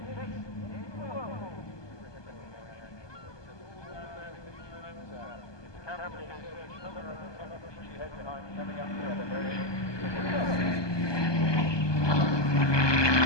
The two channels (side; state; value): right; late; 1.2 ms